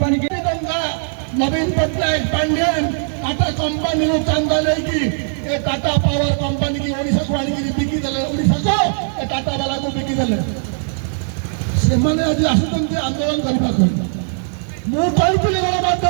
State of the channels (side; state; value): left; silent; 60 dB below the other